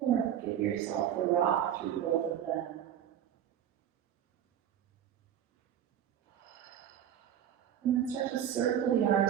give yourself a rock through both of them. And then start to circle the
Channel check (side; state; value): left; quieter; 9.9 dB